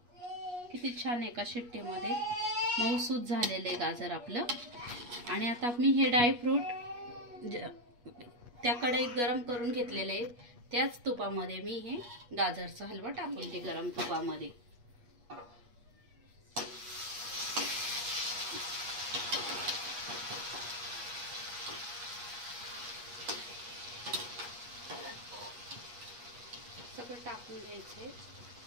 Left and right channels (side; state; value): left; late; 8.3 ms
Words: किती छान एका शिट्टीमध्ये मऊसूत झालेले गाजर आपलं। आणि आता मी हे ड्रायफ्रूट त्या कढईत गरम करून घेतलेले आहे, त्याच तुपामध्ये मी हे गाजरचा हलवा टाकून ते गरम तुपामध्ये। सगळं टाकून घ्यायचे।